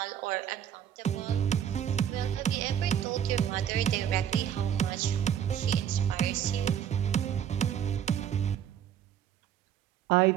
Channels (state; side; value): quieter; left; 9.4 dB